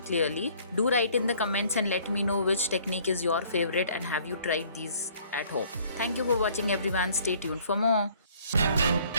clearly. Do write in the comments and let me know which technique is your favorite and have you tried these at home. Thank you for watching everyone. Stay tuned for more.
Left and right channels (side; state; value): both; inverted; correlation -0.57